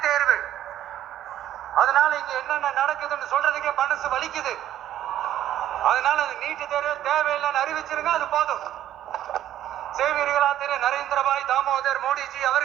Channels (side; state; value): left; quieter; 12.0 dB